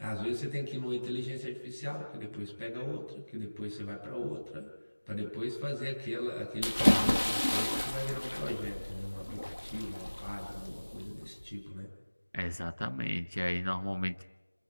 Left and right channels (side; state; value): both; inverted; correlation -1.00